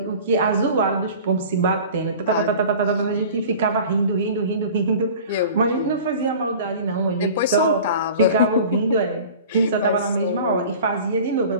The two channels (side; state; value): both; inverted; correlation -0.41